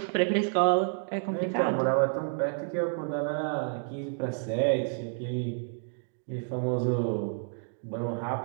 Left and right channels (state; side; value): silent; left; digital silence